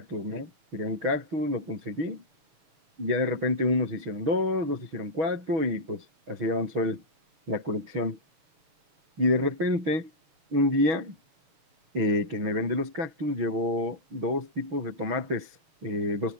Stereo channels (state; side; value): late; left; 6.3 ms